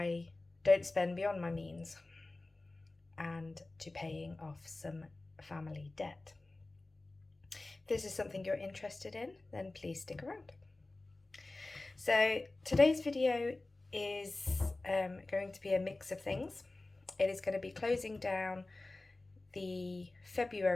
don't spend beyond my means and to paying off some family debt. If this is something you're interested in, then please stick around. So today's video is going to be a mix of things. It is going to be closing down the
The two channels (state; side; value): quieter; right; 3.0 dB